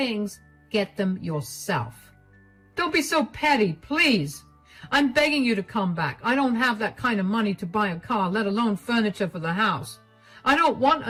get them yourself." "Don't be so petty, please. I'm begging you to come back. I don't have that kind of money to buy a car, let alone furniture for the house. I don't want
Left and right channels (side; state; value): both; identical; correlation 1.00